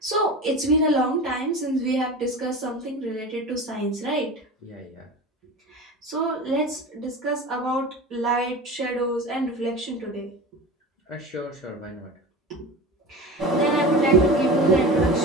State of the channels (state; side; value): normal; both; correlation 0.31